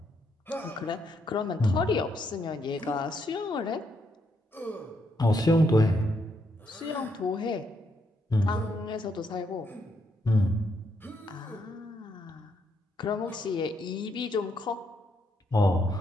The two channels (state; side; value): normal; both; correlation 0.77